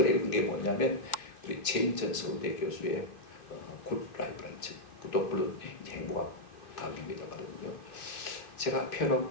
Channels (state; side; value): late; right; 2.6 ms